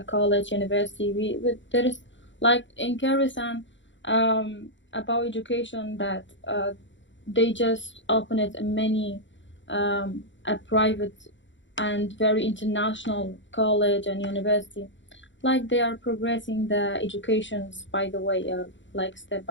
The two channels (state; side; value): late; right; 0.54 ms